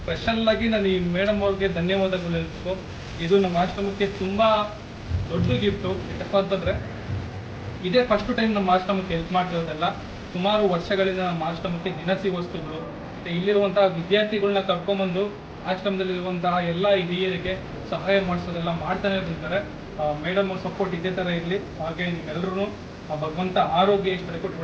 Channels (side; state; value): both; identical; correlation 1.00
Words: ಸ್ಪೆಷಲ್ಲಾಗಿ ನಾನು ಈ ಮೇಡಮ್ ಅವ್ರಿಗೆ ಧನ್ಯವಾದಗಳು ಹೇಳ್ಬೇಕು. ಇದು ನಮ್ಮ ಆಶ್ರಮಕ್ಕೆ ತುಂಬ ದೊಡ್ಡ ಗಿಫ್ಟು. ಯಾಕಪ್ಪ ಅಂತಂದರೆ ಇದೇ ಫಸ್ಟ್ ಟೈಮ್ ನಮ್ಮ ಆಶ್ರಮಕ್ಕೆ ಹೆಲ್ಪ್ ಮಾಡ್ತಿರೋದೆಲ್ಲ. ಸುಮಾರು ವರ್ಷಗಳಿಂದ ನಮ್ಮ ಆಶ್ರಮಕ್ಕೆ ದಿನಸಿ ವಸ್ತುಗಳು ಮತ್ತು ಇಲ್ಲಿರುವಂತಹ ವಿದ್ಯಾರ್ಥಿಗಳನ್ನ ಕರ್ಕೊಂಬಂದು ಆಶ್ರಮದಲ್ಲಿರುವಂತಹ ಎಲ್ಲ ಹಿರಿಯರಿಗೆ ಸಹಾಯ ಮಾಡಿಸೋದೆಲ್ಲ ಮಾಡ್ತಾನೆ ಇರ್ತಾರೆ. ಮೇಡಮ್ ಅವ್ರ ಸಪೋರ್ಟ್ ಇದೇ ಥರ ಇರಲಿ. ಹಾಗೆ ನಿಮ್ಮೆಲ್ಲರೂ ಭಗವಂತ ಆರೋಗ್ಯ ಇಷ್ಟ ಕೊಟ್ಟು